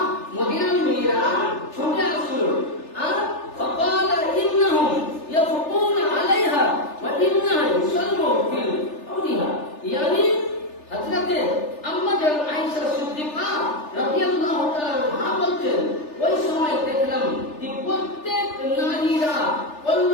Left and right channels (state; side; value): late; right; 3.4 ms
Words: মদিনার মেয়েরা ছুটে আসলো আর فقال انهم يفقون عليها وانها يصلوا في قولها يعني হযরতে আম্মাজান আয়েশা সিদ্দিকা রাদিয়াল্লাহু তাআলা আনহা বলছেন ওই সময় দেখলাম যে প্রত্যেক নারীরা বলল